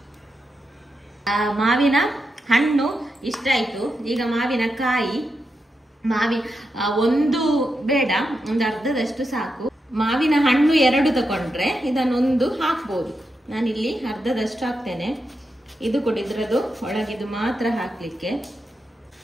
ಮಾವಿನ ಹಣ್ಣು ಇಷ್ಟ ಆಯ್ತು. ಈಗ ಮಾವಿನ ಕಾಯಿ, ಒಂದು ಬೇಡ, ಒಂದು ಅರ್ಧದಷ್ಟು ಸಾಕು. ಮಾವಿನ ಹಣ್ಣು 2 ತಗೊಂಡ್ರೆ ಇದನ್ನೊಂದು ಹಾಕ್ಬೋದು. ನಾನಿಲ್ಲಿ ಅರ್ಧದಷ್ಟು ಹಾಕ್ತೇನೆ. ಇದು ಕೊಡಿದ್ರದು ಒಳಗಿದು ಮಾತ್ರ ಹಾಕ್ಲಿಕ್ಕೆ.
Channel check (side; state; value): both; normal; correlation 0.86